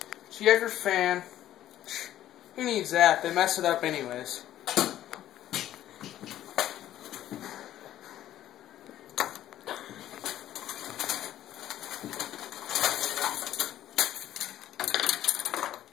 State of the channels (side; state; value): right; quieter; 12.6 dB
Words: So you have your fan. Who needs that? They mess it up anyways.